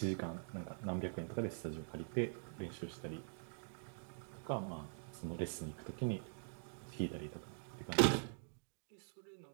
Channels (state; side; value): silent; left; digital silence